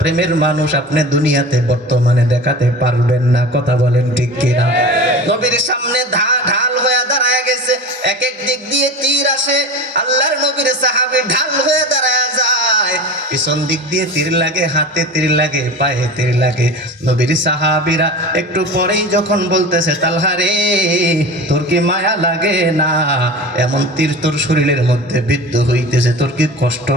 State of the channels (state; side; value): normal; both; correlation 0.33